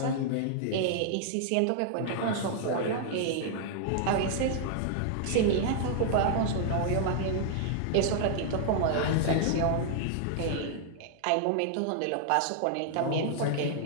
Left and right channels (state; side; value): different; both; correlation -0.01